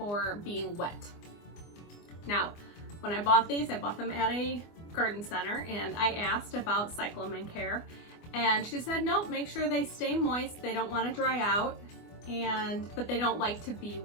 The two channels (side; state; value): right; late; 24 ms